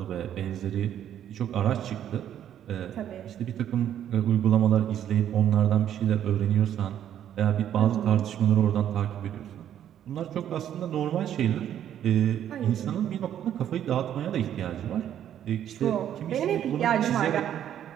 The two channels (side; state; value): left; quieter; 10.4 dB